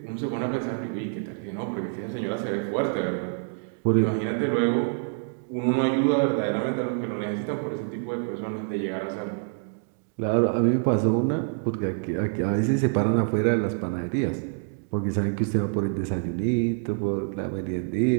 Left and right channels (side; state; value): left; silent; 61 dB below the other